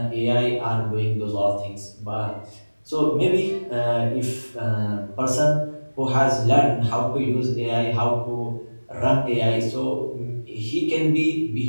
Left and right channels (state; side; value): inverted; both; correlation -1.00